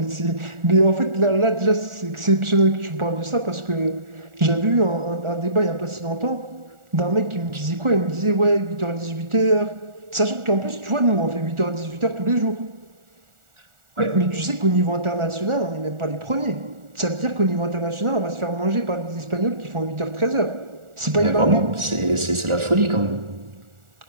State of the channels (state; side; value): late; left; 1.4 ms